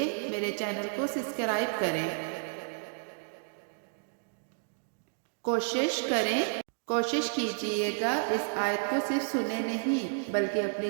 میرے چینل کو سبسکرائب کریں۔ کوشش کیجئے گا اس آیت کو صرف سنیں نہیں بلکہ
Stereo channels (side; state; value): left; silent; digital silence